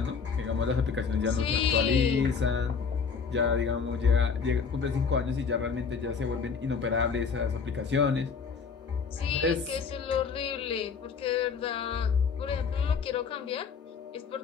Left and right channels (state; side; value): quieter; right; 5.7 dB